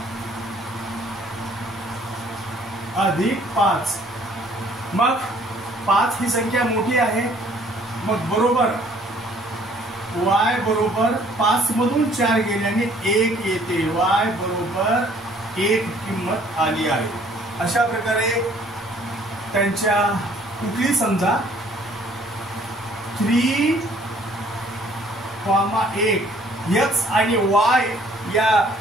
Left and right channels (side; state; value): both; normal; correlation 0.59